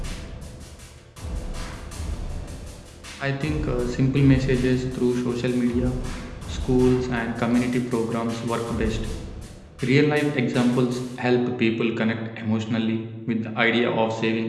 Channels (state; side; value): identical; both; correlation 1.00